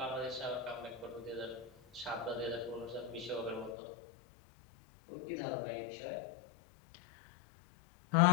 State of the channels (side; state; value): right; drops out; at 3.8 s